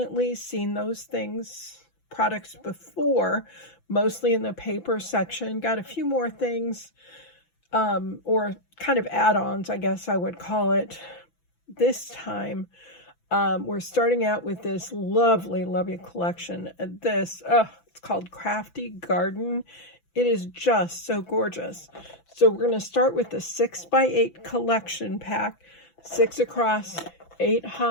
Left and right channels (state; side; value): late; right; 6.0 ms